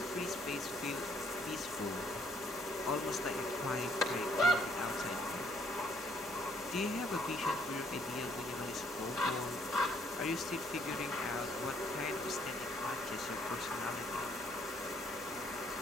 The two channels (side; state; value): both; normal; correlation 0.67